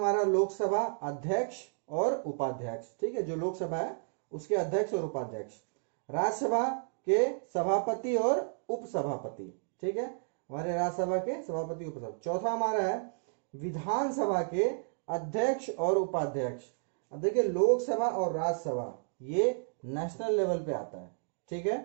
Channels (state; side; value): silent; left; digital silence